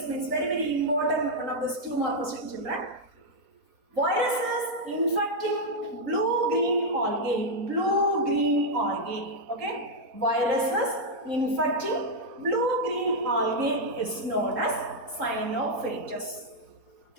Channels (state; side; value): late; left; 3.8 ms